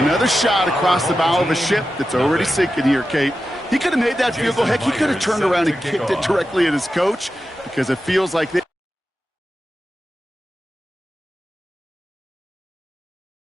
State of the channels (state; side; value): normal; both; correlation 0.92